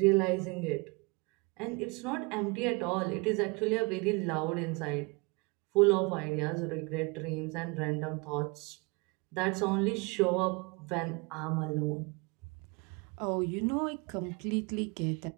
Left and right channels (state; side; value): quieter; left; 28.7 dB